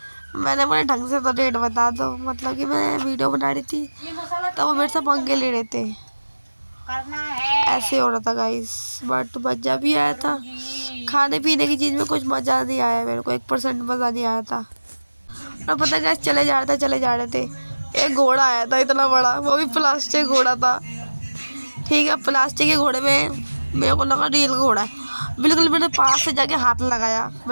मैंने बोला ढंग से तो रेट बता दो। मतलब कि मैं वीडियो बना रही थी तो वो मेरे से पंगे ले रहे थे, ऐसे हो रहा था गाइस। बट मज़ा भी आया था। खाने पीने की चीज़ में कुछ मज़ा नहीं आया मेरे को, 1% मज़ा नहीं आया था। और पता है गाइस चले जा रहे थे, एक घोड़ा आया था इतना बड़ा, वो भी प्लास्टिक घोड़ा था। ठीक है, प्लास्टिक के घोड़े में मेरे को लगा रियल घोड़ा है। बिल्कुल मैंने पास से जाके हाथ लगाया,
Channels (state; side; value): inverted; both; correlation -1.00